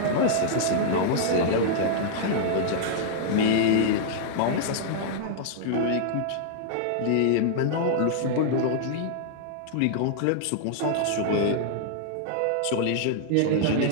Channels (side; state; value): both; different; correlation -0.01